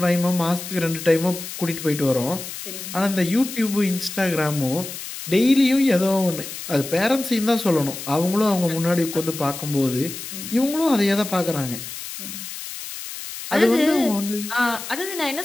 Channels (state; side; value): noise; left; hiss, 10 dB below the sound